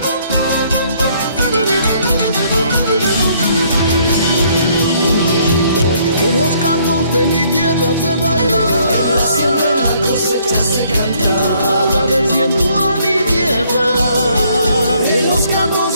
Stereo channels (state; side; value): inverted; both; correlation -0.65